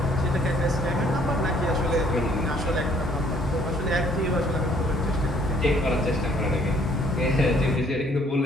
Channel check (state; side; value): normal; both; correlation 0.62